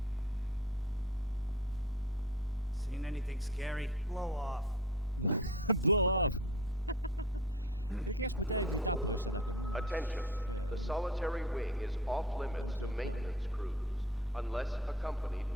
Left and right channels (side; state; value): both; normal; correlation 0.41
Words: Seen anything scary? Blow off. Blow off! Cred că i-aș putea evita pe ăștia dacă nu mă înșel. Adică încercăm.